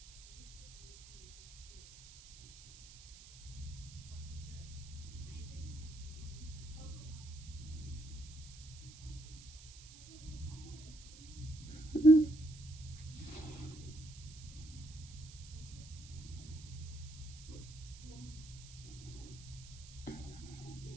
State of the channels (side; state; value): right; noise; hiss, 17 dB below the sound